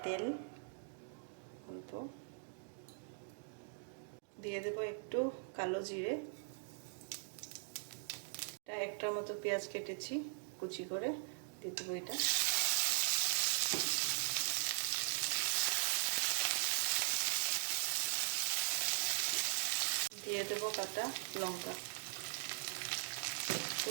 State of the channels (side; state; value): left; silent; digital silence